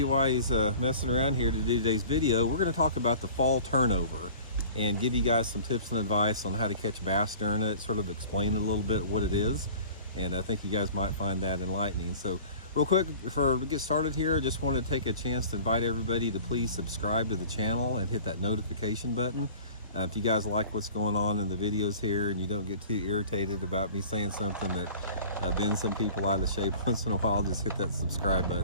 while he's messing around here to do today's video. We're gonna talk about the fall turnover and give you guys some tips and advice on how to catch bass during it, sort of explain a little bit what it is. And I think you guys might find that enlightening. So real quick, before we get started here, I just want to take a chance to invite everybody to please subscribe to the channel and hit that notification button. If you guys like what's going on in the videos here and you don't get too irritated about me saying something that bends some people out of shape once in a while, just hit that subscribe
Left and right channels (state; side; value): inverted; both; correlation -0.44